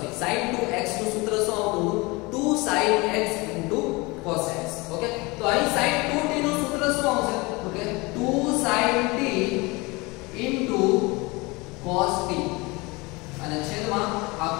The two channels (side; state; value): right; quieter; 24.8 dB